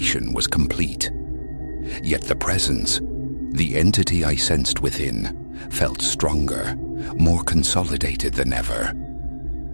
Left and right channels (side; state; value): both; inverted; correlation -1.00